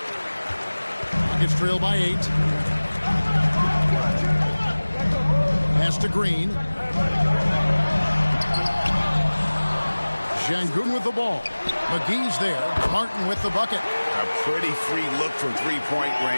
Rockets trail by 8. Pass to Green. Şengün with the ball. McGee's there. Martin with the bucket. A pretty free look from three-point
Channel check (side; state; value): both; inverted; correlation -1.00